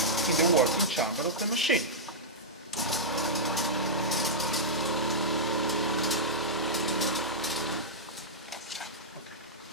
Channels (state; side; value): normal; both; correlation -0.10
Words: in the working chamber of the machine.